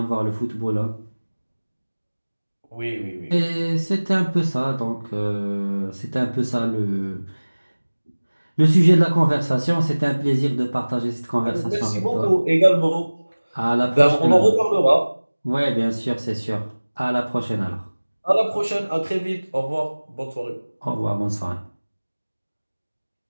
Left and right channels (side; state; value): both; inverted; correlation -1.00